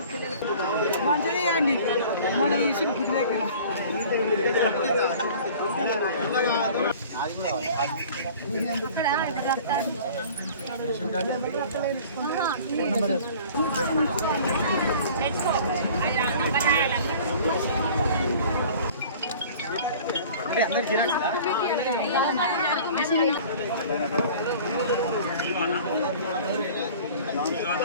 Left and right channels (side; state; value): both; inverted; correlation -0.46